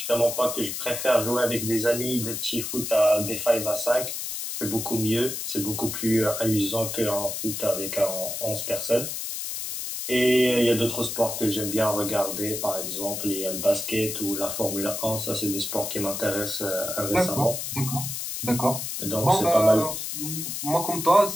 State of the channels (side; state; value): left; noise; hiss, 5 dB below the sound